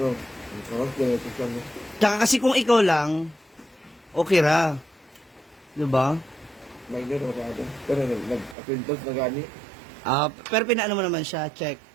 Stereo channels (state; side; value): drops out; left; at 8.6 s